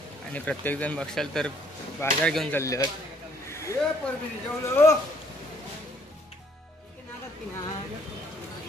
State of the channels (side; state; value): both; normal; correlation 0.63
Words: आणि प्रत्येक जण बघशाल तर बाजार घेऊन चालले आहेत.